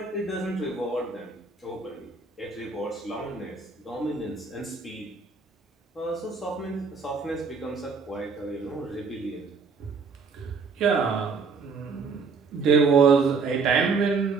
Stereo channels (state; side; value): quieter; left; 4.8 dB